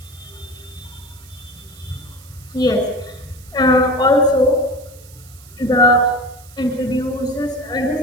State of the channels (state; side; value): noise; right; hiss, 23 dB below the sound